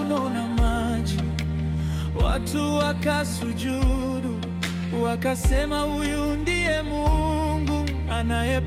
na maji. Watu wakasujudu, wakasema, huyu ndiye Mungu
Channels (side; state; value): both; identical; correlation 1.00